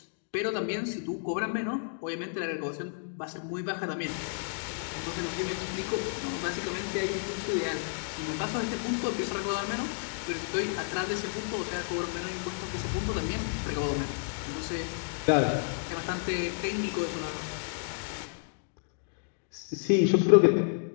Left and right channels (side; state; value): right; silent; digital silence